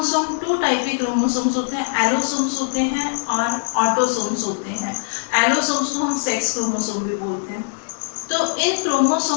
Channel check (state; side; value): silent; right; digital silence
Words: 2 टाइप के क्रोमोसोम्स होते हैं, एलोसोम्स होते हैं और ऑटोसोम्स होते हैं। एलोसोम्स को हम सेक्स क्रोमोसोम भी बोलते हैं। तो इन